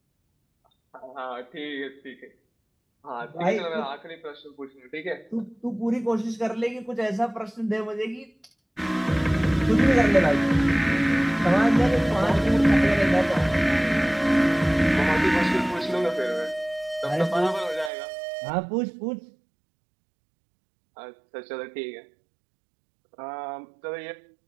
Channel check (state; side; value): drops out; left; at 17.9 s